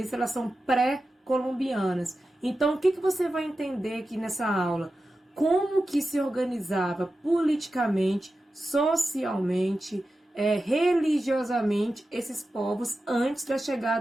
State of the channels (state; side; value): normal; both; correlation 0.92